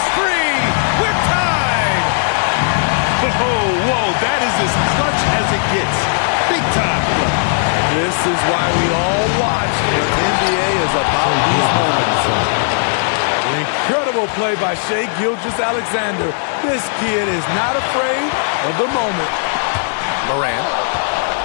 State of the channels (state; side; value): silent; right; digital silence